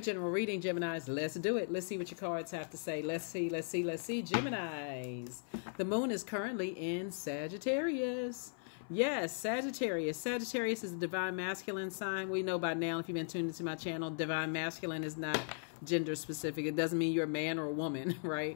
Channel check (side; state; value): right; silent; 53 dB below the other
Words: reading, Geminis. Let's do it. Let's see what your cards have to say. Let's see, Geminis. The moon is currently in Sagittarius. Yes, Sagittarius. Sagittarius is a divine masculine sign. We know by now, if you've been tuned into my channel, divine masculine is not gender specific. It doesn't mean you're a man or a woman,